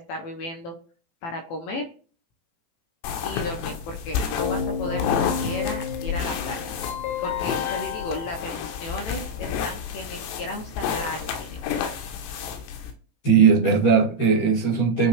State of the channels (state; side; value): late; right; 19 ms